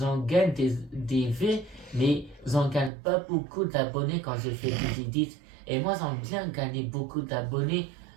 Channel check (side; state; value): left; drops out; at 2.9 s